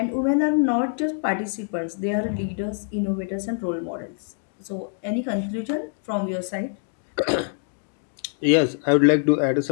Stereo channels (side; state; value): right; silent; 62 dB below the other